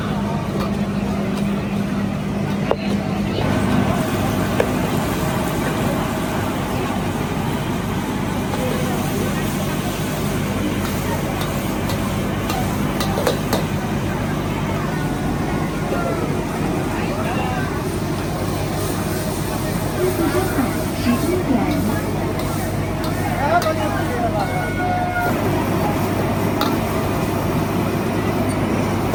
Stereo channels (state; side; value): identical; both; correlation 1.00